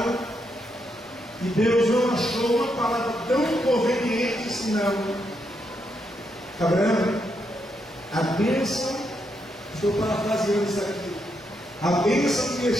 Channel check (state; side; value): normal; both; correlation 0.80